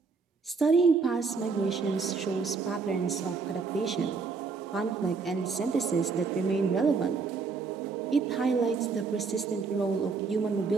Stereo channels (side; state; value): left; quieter; 4.8 dB